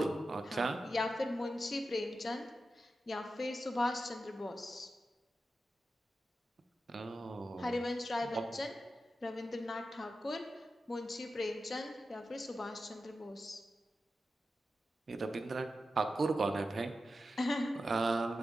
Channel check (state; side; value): normal; both; correlation 0.91